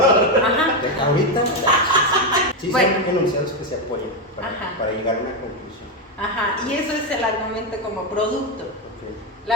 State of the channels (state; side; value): normal; both; correlation 0.08